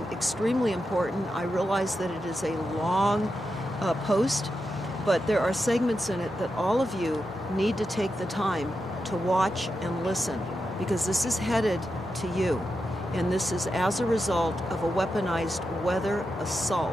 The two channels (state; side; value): normal; both; correlation 0.88